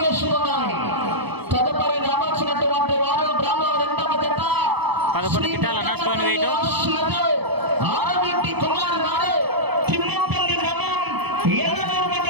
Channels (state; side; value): late; left; 0.98 ms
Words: తదుపరి రావాల్సినటువంటి వారు గ్రామం రెండవ జత 11 గిట్టాలు అన్న స్టోన్ వెయిట్ ఆరవింటి కుమార్ గారు తిమ్మపల్లి గ్రామం ఏలూరు